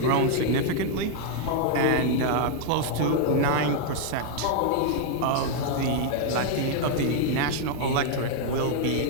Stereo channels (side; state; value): both; different; correlation 0.00